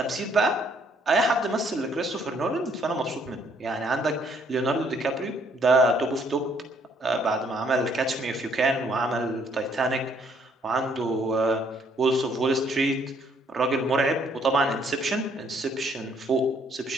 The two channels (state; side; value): normal; both; correlation 0.66